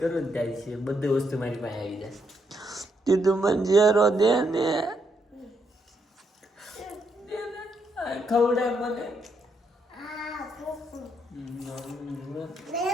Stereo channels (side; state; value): both; normal; correlation 0.77